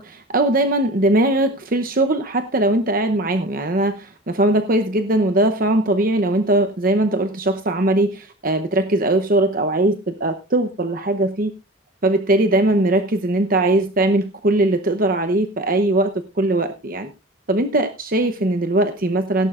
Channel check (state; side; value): normal; both; correlation 0.37